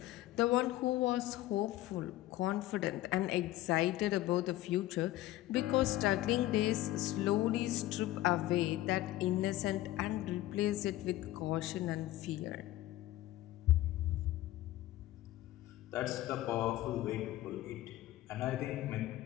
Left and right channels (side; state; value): right; quieter; 15.6 dB